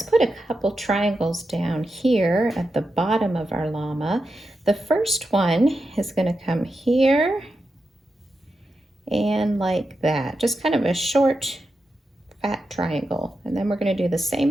put a couple triangles down here at the bottom of our llama. The first one is going to come here and like that, just kind of a short, fat triangle. And then we're going to do the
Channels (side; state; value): both; normal; correlation 0.88